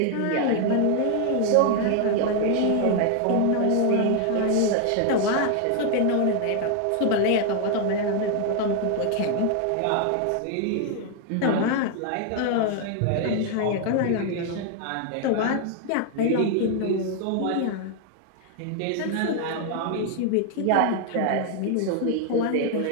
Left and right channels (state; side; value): different; both; correlation 0.00